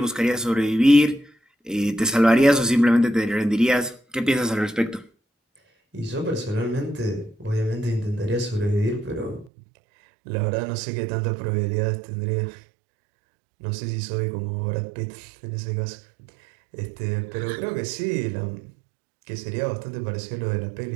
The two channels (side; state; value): left; drops out; at 9.5 s